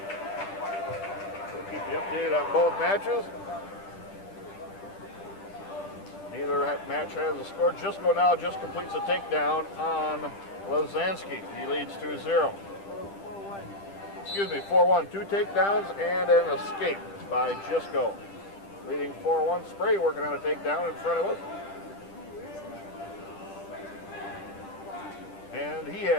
We'll keep you updated on both matches. Neither match has a score. Jisco now just completes a takedown on Lazansky. He leads 2-0. 4-1. 2 takedowns and an escape by Jisco. Leading 4-1. Spray working on a takedown in front of us. And he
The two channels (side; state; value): right; late; 10 ms